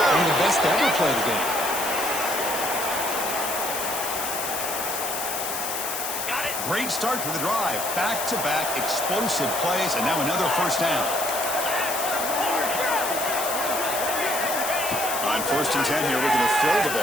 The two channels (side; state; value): left; noise; hiss, 4 dB below the sound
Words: of the best to ever play the game. Great start to the drive. Back-to-back explosive plays, and now another first down. On first and 10 here, we're going to throw the